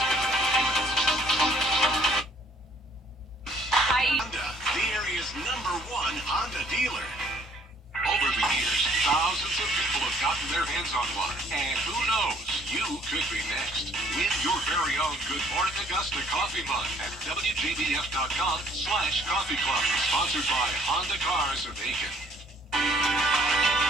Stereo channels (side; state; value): both; normal; correlation 0.61